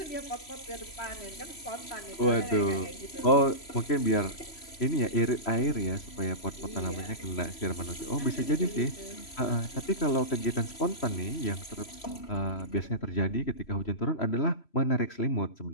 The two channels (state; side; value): late; right; 3.0 ms